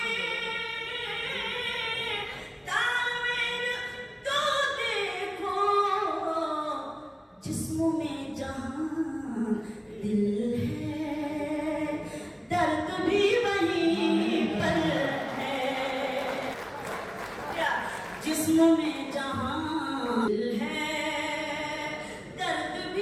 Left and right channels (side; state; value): both; identical; correlation 1.00